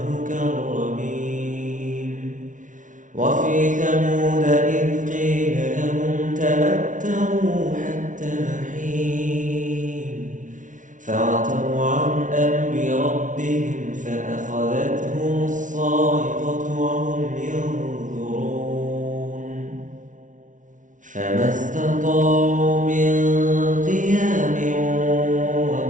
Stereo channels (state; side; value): late; left; 0.37 ms